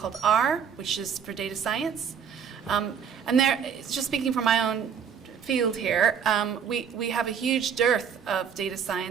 R, which is for data science. And just speaking from my own field here, we have a huge dearth of data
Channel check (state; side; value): quieter; left; 7.4 dB